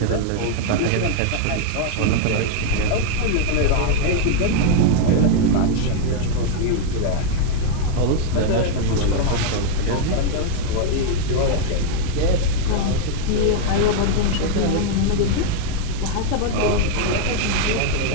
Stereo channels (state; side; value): different; both; correlation 0.00